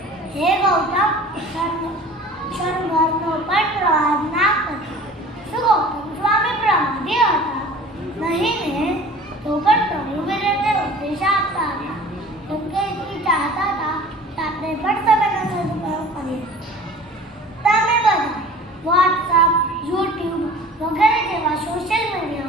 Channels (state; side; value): normal; both; correlation 0.44